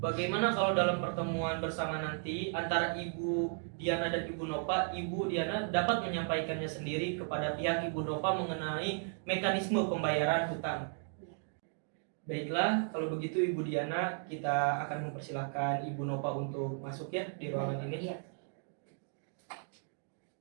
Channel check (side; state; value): left; silent; 54 dB below the other